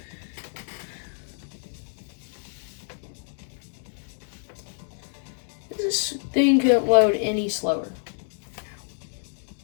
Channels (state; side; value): silent; right; 59 dB below the other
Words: This thing couldn't load any slower.